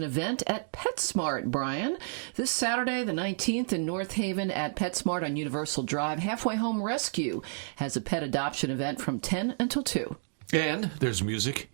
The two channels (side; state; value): left; silent; digital silence